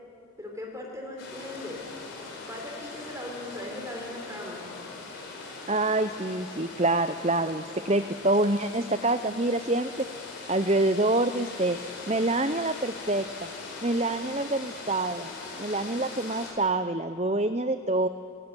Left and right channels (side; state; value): both; normal; correlation 0.23